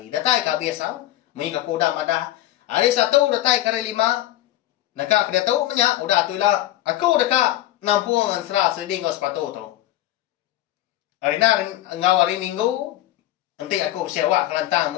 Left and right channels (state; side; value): quieter; right; 14.5 dB